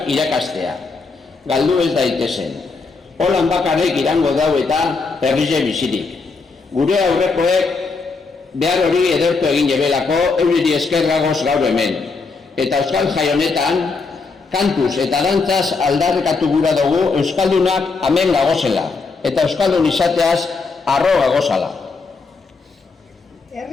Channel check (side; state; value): right; quieter; 4.3 dB